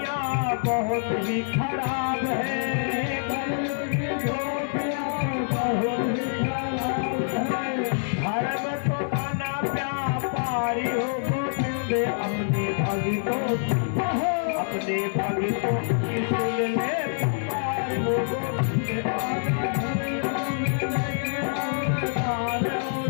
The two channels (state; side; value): silent; right; digital silence